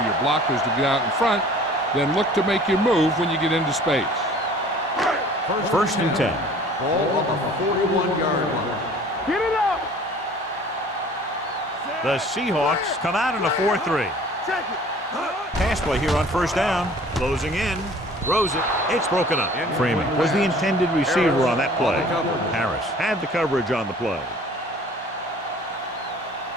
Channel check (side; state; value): both; normal; correlation 0.49